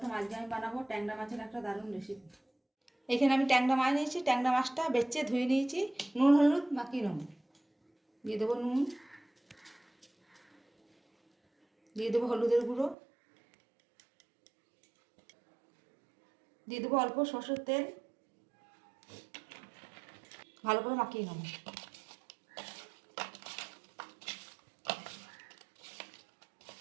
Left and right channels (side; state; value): left; drops out; at 13.0 s